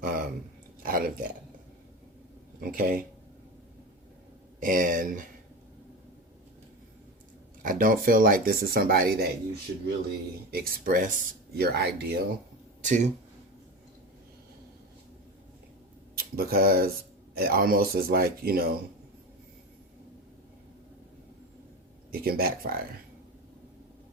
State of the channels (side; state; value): both; normal; correlation 0.25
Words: um, out of that. Okay, and I don't feel like this is somebody that you should really express your ideal to, because it almost is like it can backfire.